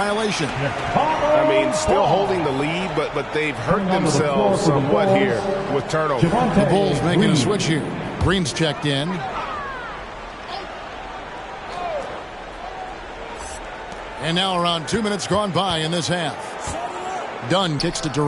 I mean, still holding the lead, but they've hurt themselves somewhat here with turnovers. The Bulls making a switch here. Green's checked in. And now around 2 minutes gone by in this half. Dunn kicks to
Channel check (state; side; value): identical; both; correlation 1.00